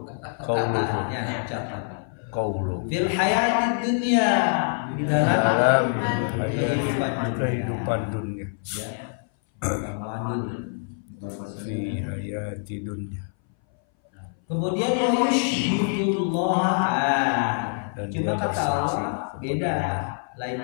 ucapan. Qauluhu Fil hayati dunia, di dalam kehidupan dunia. Ya. Fi hayati dunia. Kemudian yushhidullah. Dan Cuma dia kata bersaksi Allah beda,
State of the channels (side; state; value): right; silent; 60 dB below the other